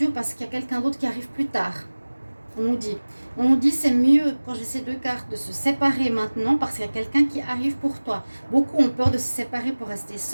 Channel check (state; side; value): inverted; both; correlation -1.00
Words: parce qu'il y a quelqu'un d'autre qui arrive plus tard. On nous dit c'est mieux, quand j'ai ces 2 cartes, de se séparer maintenant parce qu'il y a quelqu'un qui arrive pour toi. Beaucoup ont peur de se séparer pour rester